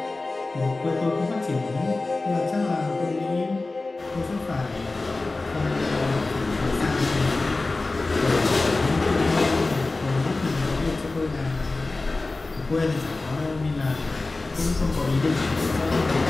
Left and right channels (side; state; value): right; quieter; 3.3 dB